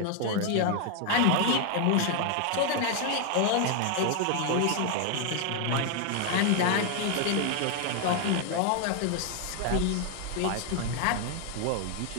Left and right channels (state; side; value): different; both; correlation 0.00